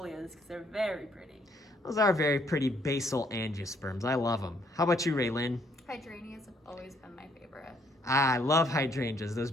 because they're very pretty. Those are very pretty basal angiosperms. I love them. How about you, Raylyn? Hydrangeas have always been my favorite. Ah, I love hydrangeas. Those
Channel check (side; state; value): both; normal; correlation 0.67